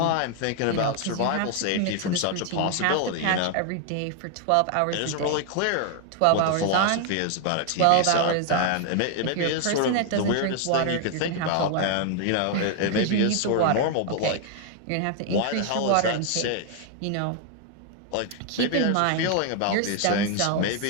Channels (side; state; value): both; different; correlation 0.00